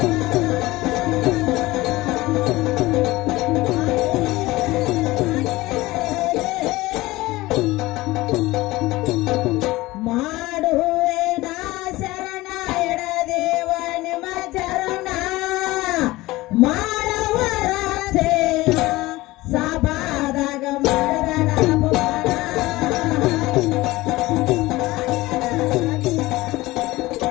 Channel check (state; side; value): quieter; right; 19.3 dB